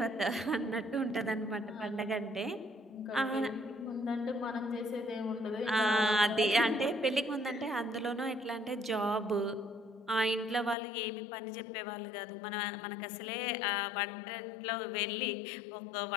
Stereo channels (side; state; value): right; drops out; at 10.8 s